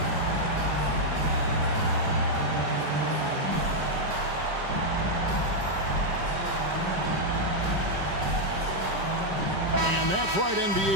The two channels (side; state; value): left; late; 5.2 ms